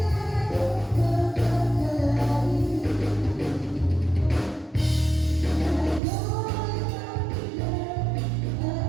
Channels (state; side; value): drops out; left; at 6.0 s